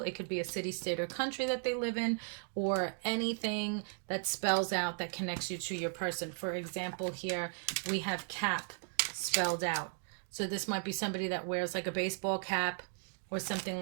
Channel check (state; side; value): silent; left; 54 dB below the other